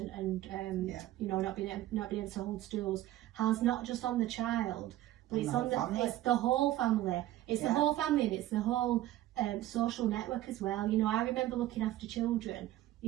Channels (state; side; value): quieter; left; 14.6 dB